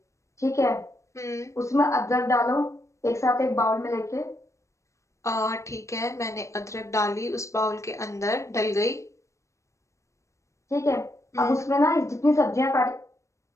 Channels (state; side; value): late; right; 0.15 ms